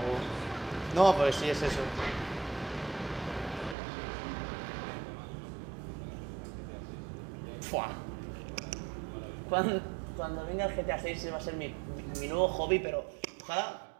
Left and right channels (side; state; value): left; drops out; at 3.8 s